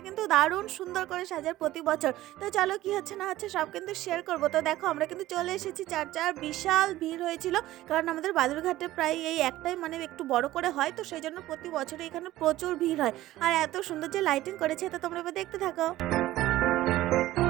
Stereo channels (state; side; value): quieter; left; 15.6 dB